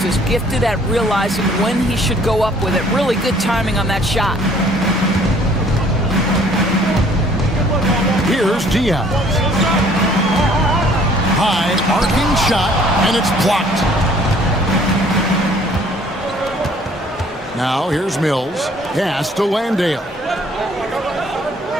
is gifted at realizing when he should go up with it. Really good timing on that shot. Here's Diaz. High arcing shot, and it's blocked. Now here's Mills. Pass to Landale.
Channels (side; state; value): both; normal; correlation 0.58